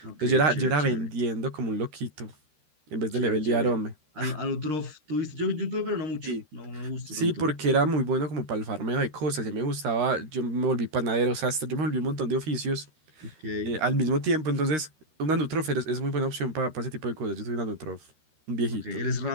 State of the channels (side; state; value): left; late; 13 ms